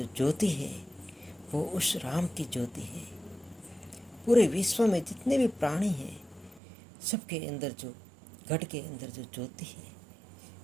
ज्योति है वो उस राम की ज्योति है। पूरे विश्व में जितने भी प्राणी हैं, सबके अंदर जो, घट के अंदर जो ज्योति है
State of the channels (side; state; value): left; drops out; at 6.6 s